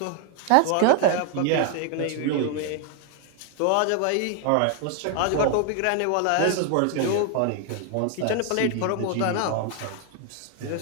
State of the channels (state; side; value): different; both; correlation 0.00